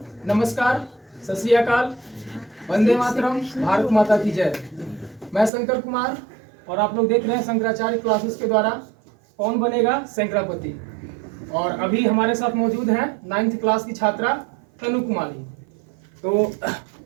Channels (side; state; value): left; drops out; at 5.5 s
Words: नमस्कार, सत श्री अकाल, वंदे मातरम, भारत माता की जय। मैं शंकर कुमार और आप लोग देख रहे हैं शंकराचार्य क्लासेस के द्वारा कौन बनेगा शंकरापति। और अभी हमारे साथ मौजूद हैं 9th क्लास की छात्रा तनु कुमारी। तो